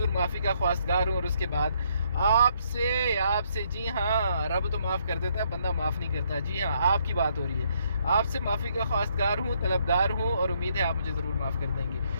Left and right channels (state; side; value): inverted; both; correlation -0.71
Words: माफ़ी का ख्वास्तगार हूँ, और उसके बाद आपसे जी हाँ, रब तो माफ़ कर देता है, बंदा माफ़ नहीं करता। जी हाँ, आपकी बात हो रही है। आपसे माफ़ी का ख्वास्तगार हूँ, तलबगार हूँ, और उम्मीद है आप मुझे ज़रूर माफ़ कर देंगे।